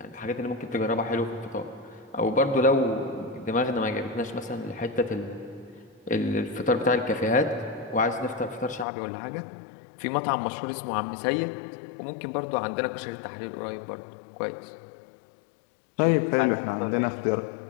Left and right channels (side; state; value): right; drops out; at 8.8 s